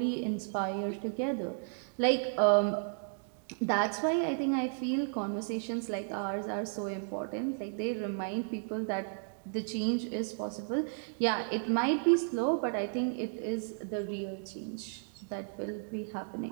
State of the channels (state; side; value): silent; left; digital silence